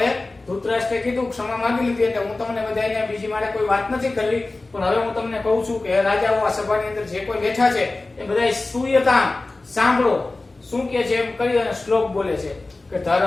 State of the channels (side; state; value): right; quieter; 3.2 dB